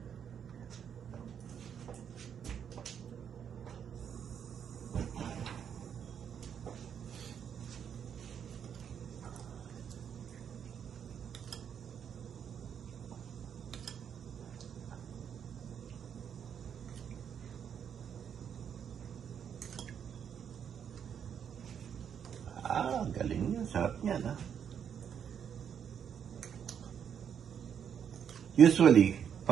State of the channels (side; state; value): left; quieter; 8.1 dB